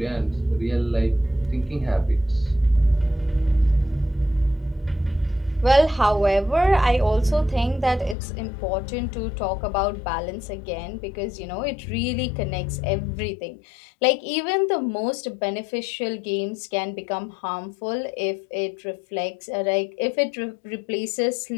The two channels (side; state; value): right; drops out; at 8.2 s